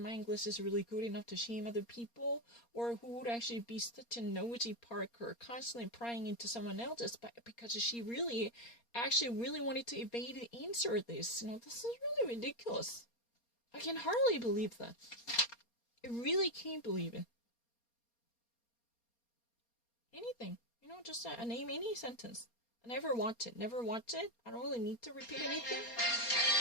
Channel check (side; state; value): right; late; 4.3 ms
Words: my English is really good enough to shame other people, or who would actually be such a nosy Parker, constantly prying into someone else's, but because she really wanted to evade the answer of this. This is really ridiculous. I can hardly believe that. I really can't believe it. Anything. Just name any sentence. I never watch it. Never watch it. I don't really need to repeat anything.